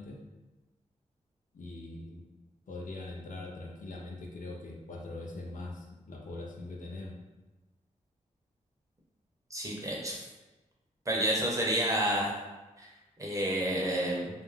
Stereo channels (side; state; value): both; normal; correlation 0.34